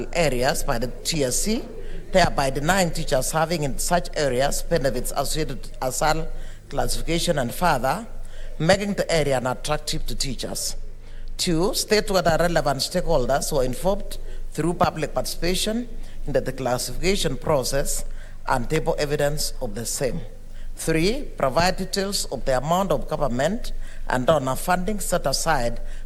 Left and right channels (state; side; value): identical; both; correlation 1.00